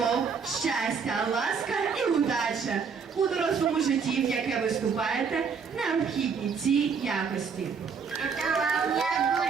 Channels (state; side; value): quieter; left; 5.9 dB